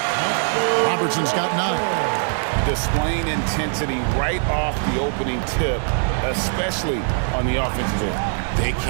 Robertson's got 9. Displaying intensity right off the opening tip, especially on the offensive end. They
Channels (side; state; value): left; silent; digital silence